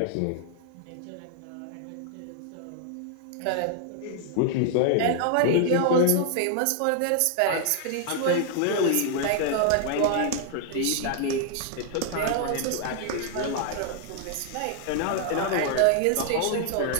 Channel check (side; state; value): both; different; correlation 0.00